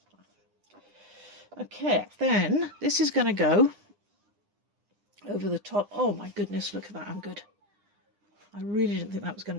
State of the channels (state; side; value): late; left; 9.9 ms